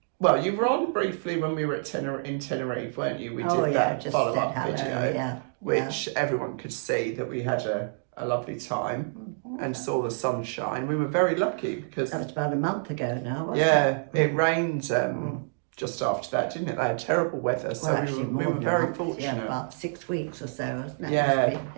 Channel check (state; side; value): silent; left; digital silence